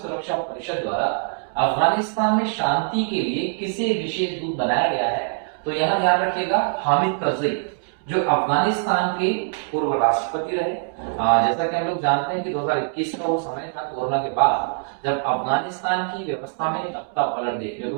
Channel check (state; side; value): silent; left; digital silence